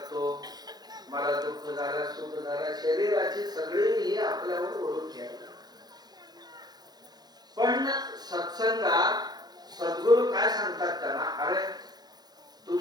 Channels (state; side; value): late; left; 0.19 ms